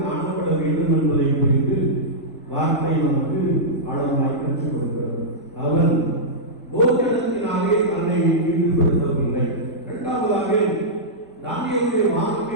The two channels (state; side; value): normal; both; correlation -0.12